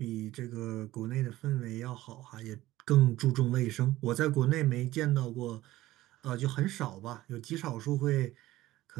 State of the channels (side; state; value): left; quieter; 16.4 dB